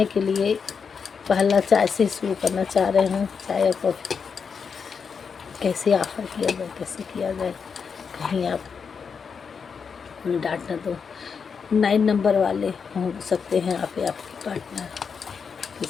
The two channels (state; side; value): quieter; right; 6.0 dB